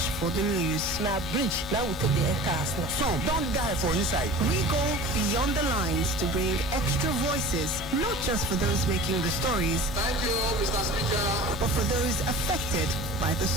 for the news. Now bridge, now we take the air cars. Some don't die for inside. We go beyond the lines to bring extra voices, not just for those making the stories, Thank you, Mr. Speaker. but for those affected by the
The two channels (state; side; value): normal; both; correlation 0.39